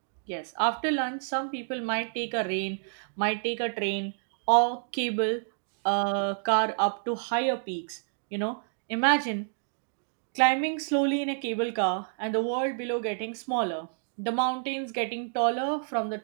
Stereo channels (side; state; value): left; silent; digital silence